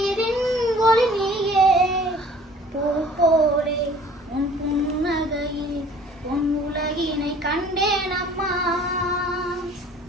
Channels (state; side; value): normal; both; correlation 0.51